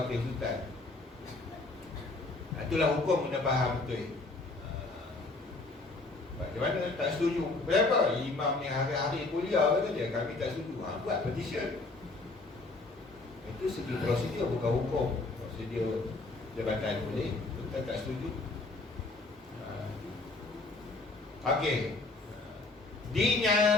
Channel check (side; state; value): right; quieter; 3.3 dB